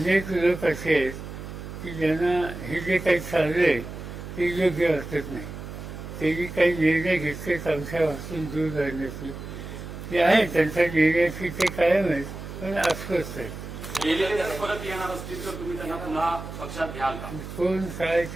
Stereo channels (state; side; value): noise; right; hum, 10 dB below the sound